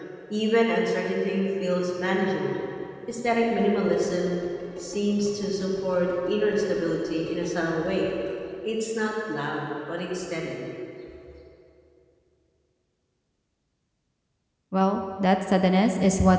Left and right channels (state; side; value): identical; both; correlation 1.00